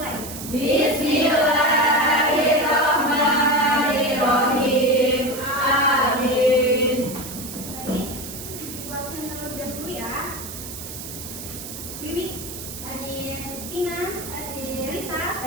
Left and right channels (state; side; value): noise; right; hiss, 10 dB below the sound